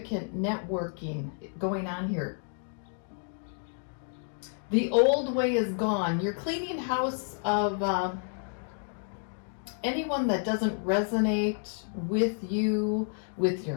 networking going on here. The old way is gone. You're cleaning house of anyone that doesn't resonate with you, with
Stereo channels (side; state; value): right; silent; 58 dB below the other